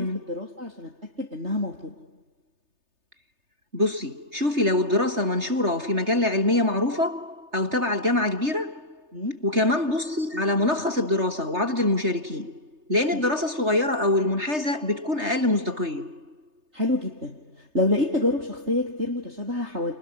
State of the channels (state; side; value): late; left; 3.3 ms